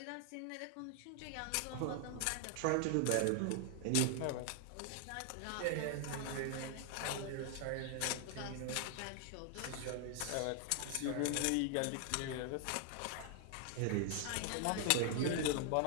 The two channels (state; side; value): different; both; correlation 0.00